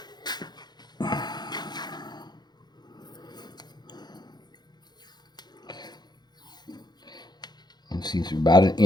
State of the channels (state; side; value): late; right; 0.20 ms